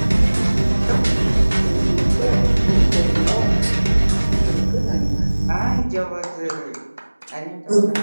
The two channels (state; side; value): inverted; both; correlation -1.00